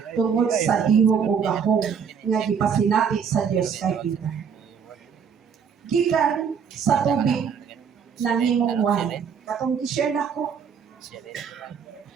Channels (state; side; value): quieter; left; 6.8 dB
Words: Tungod sa ihong o gahong nga gipasinati sa Dios kay Peter. Gikan sa tubig ng himong wine. Katong i-share na ko.